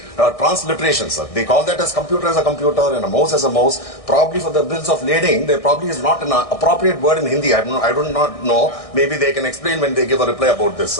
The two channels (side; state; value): right; late; 1.6 ms